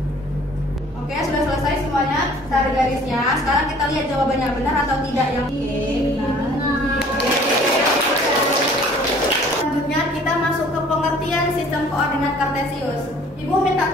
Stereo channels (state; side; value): normal; both; correlation 0.53